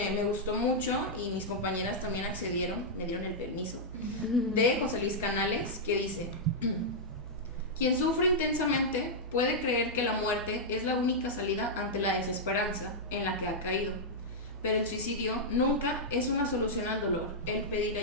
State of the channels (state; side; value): normal; both; correlation -0.07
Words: me gustó mucho y mis compañeras también accedieron, me dieron el permiso, de José Luis Canales, que dice: quien sufre intensamente puede creer que la muerte es la única salida ante la desesperanza en la que ha caído, pero el suicidio nunca es una solución al dolor. El pedir